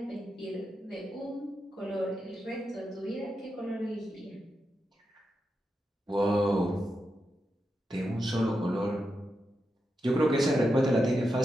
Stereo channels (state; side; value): normal; both; correlation 0.87